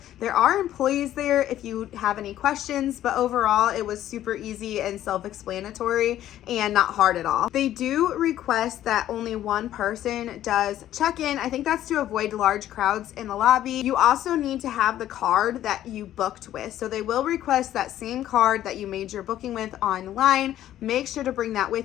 There are employees there if you have any questions, but overall it was super easy and self-explanatory and not hard at all. They do request that only one person does check-in. I think that's to avoid large crowds in the lobby. You also need to have the card that you booked with. So they will request that same card that you made your booking with online. Make sure to bring that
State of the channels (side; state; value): right; quieter; 12.4 dB